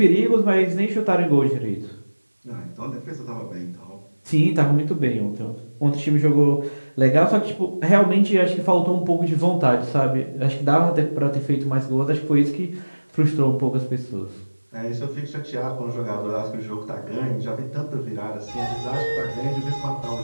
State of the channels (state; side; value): inverted; both; correlation -1.00